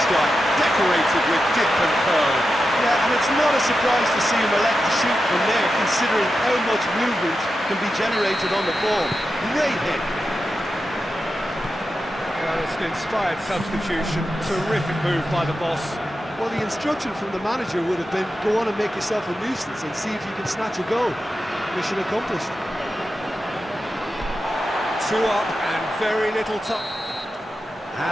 Decorated with dip and curl. Yeah, and it's not a surprise to see him elect to shoot from there, considering how much movement can be generated on the ball. Great hit. Well, it's an inspired substitution. Terrific move by the boss. Well, the instruction from the manager would have been, go on and make yourself a nuisance and see if you can snatch a goal. Mission accomplished. 2 up and very little time.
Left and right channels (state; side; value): normal; both; correlation 0.90